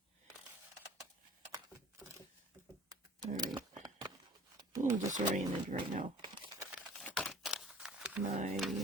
Alright. A little disoriented right now. My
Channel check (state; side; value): normal; both; correlation 0.49